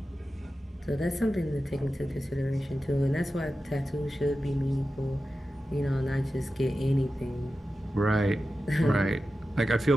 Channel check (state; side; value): normal; both; correlation 0.93